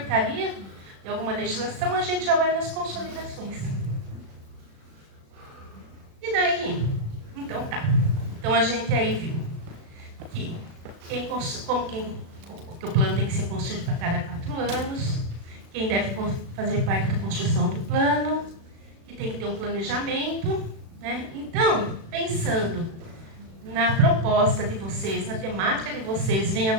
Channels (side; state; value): left; late; 36 ms